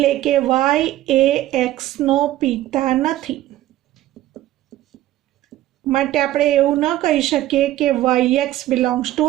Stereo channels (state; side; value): quieter; left; 14.6 dB